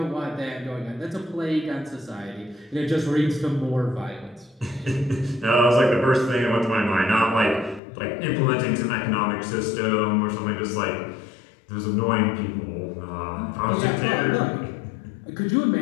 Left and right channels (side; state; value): right; drops out; at 7.8 s